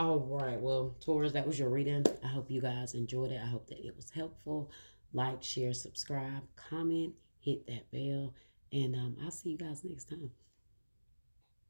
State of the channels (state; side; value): inverted; both; correlation -1.00